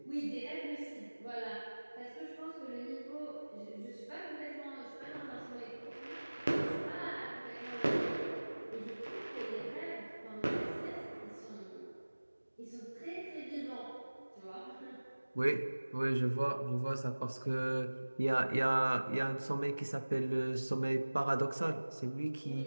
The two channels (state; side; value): inverted; both; correlation -1.00